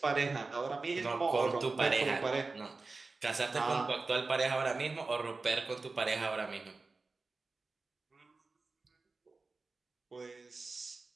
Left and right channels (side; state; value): left; quieter; 3.8 dB